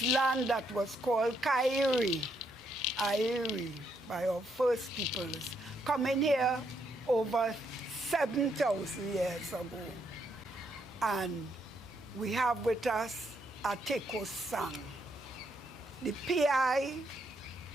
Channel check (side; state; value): both; normal; correlation 0.75